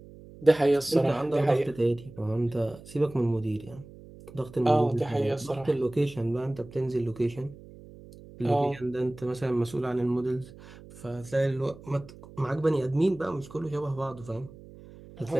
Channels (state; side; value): noise; right; hum, 19 dB below the sound